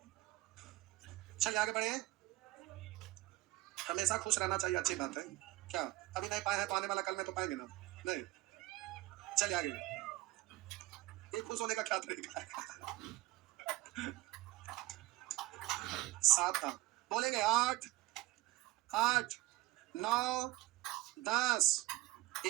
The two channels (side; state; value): left; quieter; 17.7 dB